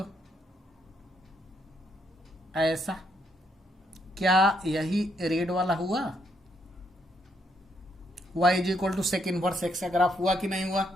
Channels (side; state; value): both; normal; correlation 0.74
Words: ऐसा, क्या यही रेड वाला हुआ, y is equal to sec inverse x का ग्राफ हुआ कि नहीं हुआ।